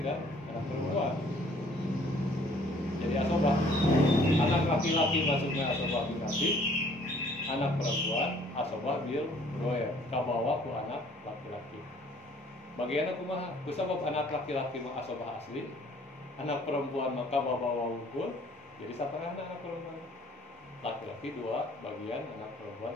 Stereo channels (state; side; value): normal; both; correlation 0.58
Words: dan anak perempuan. Jadi asobah, anak laki-laki maksudnya asobah binati, anak perempuan asobah bil goer, kabawa ku anak laki-laki. Bagian kumaha? Ku sabab anak laki-laki mah asobah asli, anak perempuan maka bawa ukur, jadi setengah anak perempuan. Laki-laki 2 bagian, anak perempuan